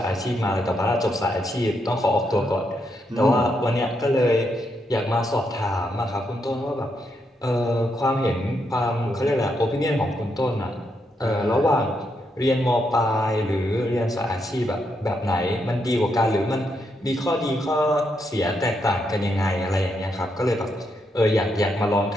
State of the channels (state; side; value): normal; both; correlation 0.79